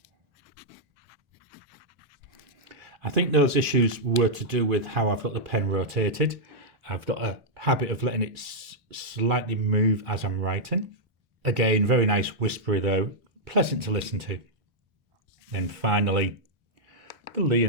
I think those issues were to do with how I've got the pen rotated. I've got a habit of letting it slightly move as I'm writing. Again, very nice whispery though, pleasant to listen to. Then finally, the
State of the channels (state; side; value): normal; both; correlation -0.06